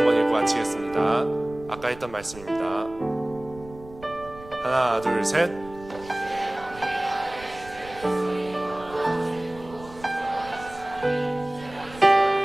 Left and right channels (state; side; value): noise; right; rumble, 19 dB below the sound